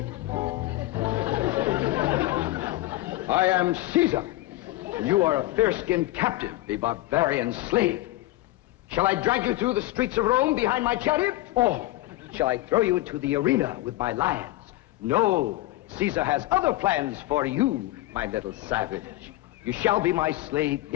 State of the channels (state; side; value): quieter; right; 17.2 dB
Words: I am Caesar. You are a fair-skinned captive, a barbarian slave. Shall I drag you through the streets of Rome behind my chariot? Or shall I throw you into the arena with my lions? No, Caesar has other plans for you, my little savage. You shall be my slave,